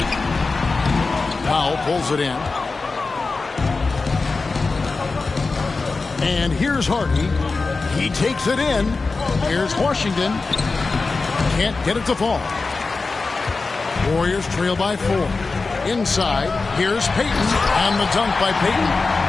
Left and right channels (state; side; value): quieter; right; 4.0 dB